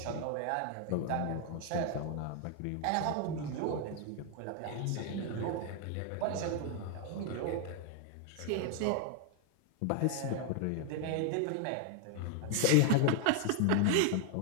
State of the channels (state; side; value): different; both; correlation 0.00